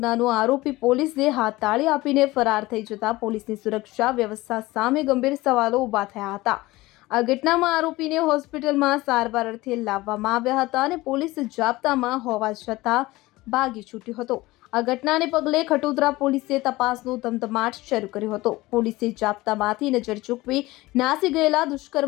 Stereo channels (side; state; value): right; quieter; 19.5 dB